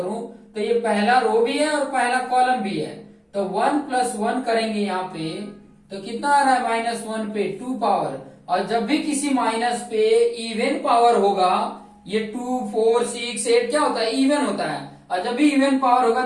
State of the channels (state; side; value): identical; both; correlation 1.00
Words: तो ये पहला रो भी है और पहला कॉलम भी है। तो 1 + 1 करेंगे यहाँ पे, तो कितना आ रहा है -1 पे 2 पावर। और जब भी किसी माइनस पे इवन पावर होगा, ये 2 4 6 8 क्या होता है इवन होता है, और जब भी इवन पावर होगा